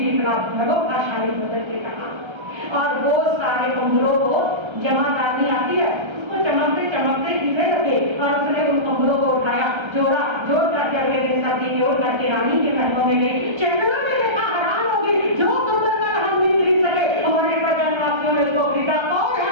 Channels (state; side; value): late; left; 1.3 ms